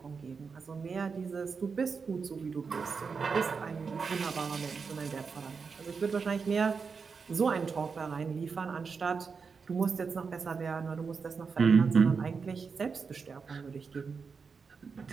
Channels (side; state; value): left; quieter; 5.3 dB